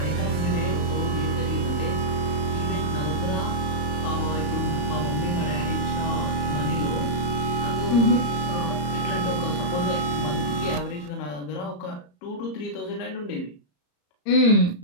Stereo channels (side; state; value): right; late; 34 ms